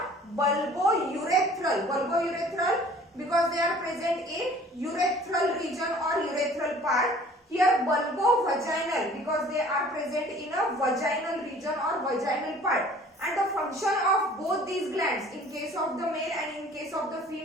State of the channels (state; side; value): normal; both; correlation 0.50